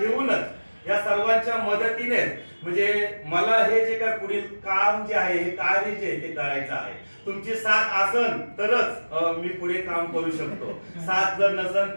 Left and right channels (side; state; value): both; inverted; correlation -1.00